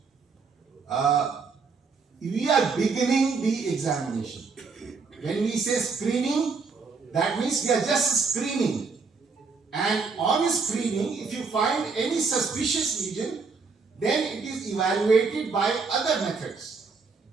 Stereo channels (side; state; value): left; quieter; 4.8 dB